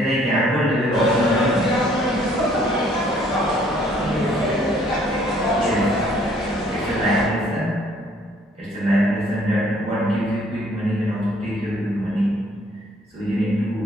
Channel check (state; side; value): normal; both; correlation 0.61